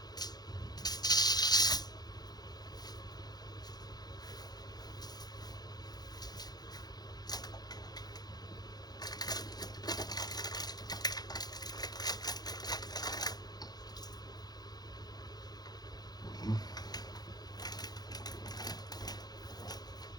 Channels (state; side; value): late; right; 0.19 ms